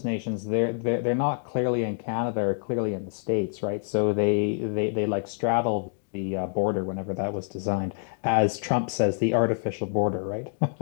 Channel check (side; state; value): right; silent; 60 dB below the other